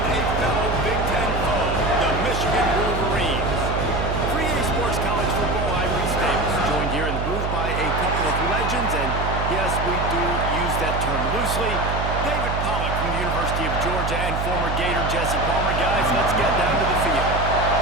a fellow Big Ten foe, the Michigan Wolverines. Free A Sports College Football, I'm Reese Davis, joined here in the booth by a couple of legends, and yes, we do use that term loosely. David Pollack from the University of Georgia and former Gator Jesse Palmer. Guys, let's get down to the field.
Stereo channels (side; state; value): right; noise; hum, 2 dB below the sound